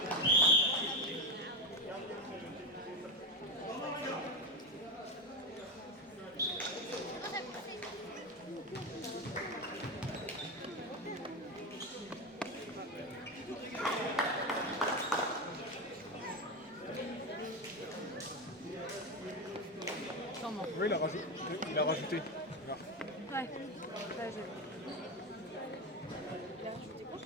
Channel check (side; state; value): both; normal; correlation 0.17